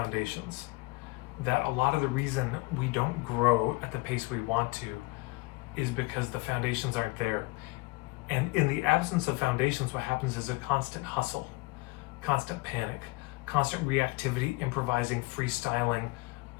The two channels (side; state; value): right; quieter; 24.9 dB